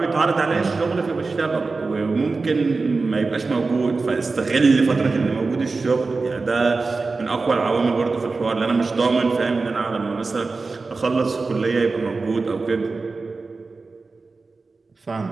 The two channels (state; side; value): quieter; left; 4.0 dB